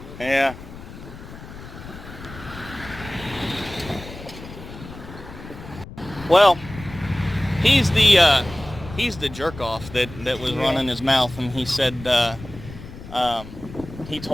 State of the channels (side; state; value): left; noise; rumble, 14 dB below the sound